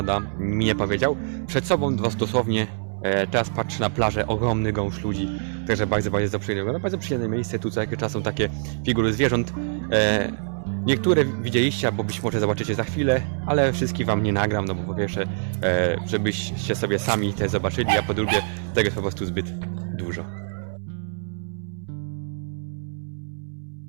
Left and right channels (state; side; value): silent; left; 62 dB below the other